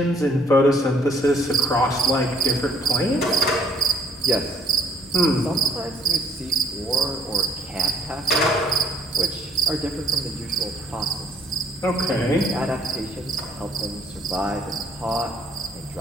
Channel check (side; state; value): both; normal; correlation 0.62